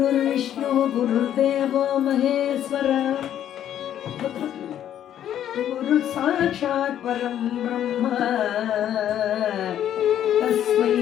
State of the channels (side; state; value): right; quieter; 10.7 dB